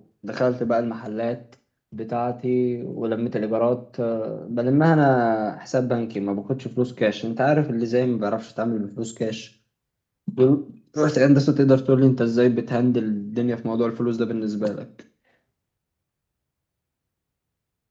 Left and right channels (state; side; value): identical; both; correlation 1.00